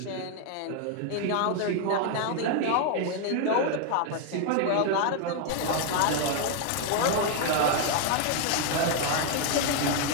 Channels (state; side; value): different; both; correlation 0.01